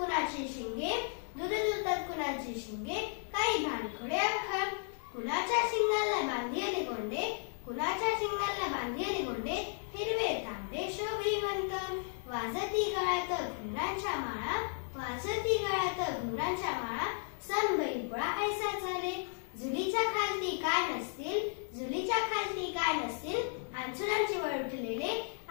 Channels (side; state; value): right; silent; 55 dB below the other